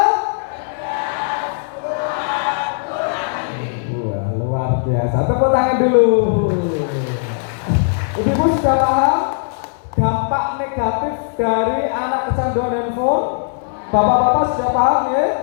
Wah, luar biasa. Tepuk tangan dulu. Ibu-ibu sudah paham dampak negatif dari anak kecanduan handphone? Bapak-bapak sudah paham ya?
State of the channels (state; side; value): silent; right; 61 dB below the other